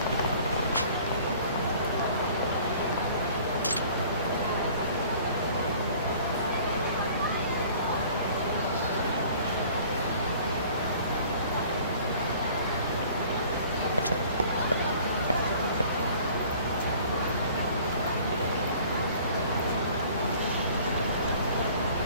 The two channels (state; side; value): inverted; both; correlation -0.50